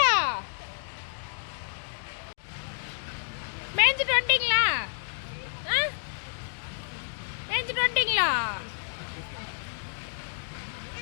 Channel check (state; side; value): silent; right; digital silence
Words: மேய்ஞ்சிட்டு வந்துட்டீங்களா? மேய்ஞ்சிட்டு வந்துட்டீங்களா?